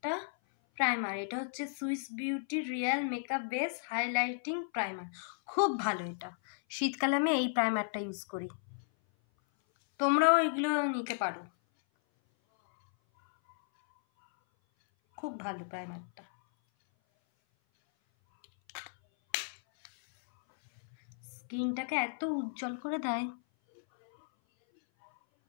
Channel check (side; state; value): right; silent; 55 dB below the other